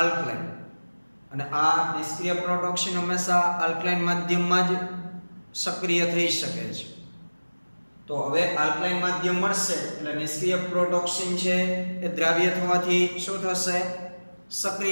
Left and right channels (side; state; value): both; inverted; correlation -1.00